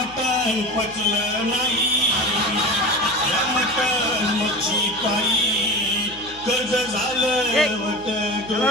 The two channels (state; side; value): noise; left; hum, 22 dB below the sound